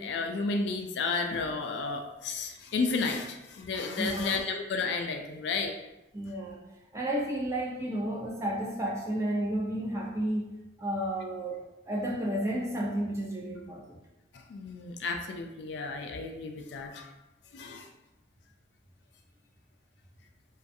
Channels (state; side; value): normal; both; correlation 0.46